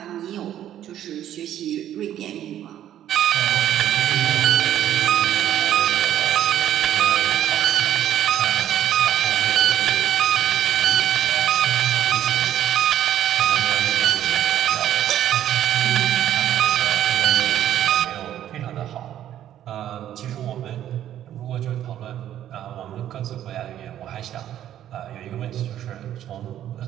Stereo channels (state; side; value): quieter; left; 11.5 dB